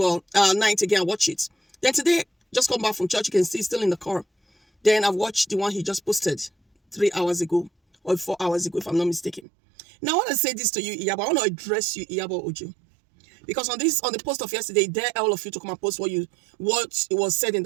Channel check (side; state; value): left; drops out; at 9.4 s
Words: Night again, I watched it. Then today, just come back from church, you can see still in the car. Then I've watched the one he just posted 3 hours ago or 4 hours ago, if I'm not mistaken. Now, I want to say this to you, Iyabo. I want to address you, Iyabo Ojo. Because on the post of yesterday, dare all of you to come and post what it was said in